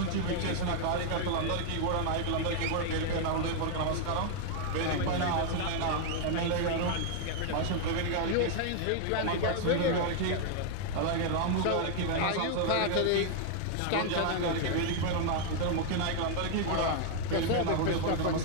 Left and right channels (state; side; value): different; both; correlation 0.00